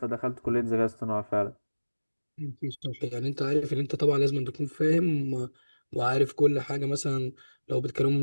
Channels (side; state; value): both; inverted; correlation -1.00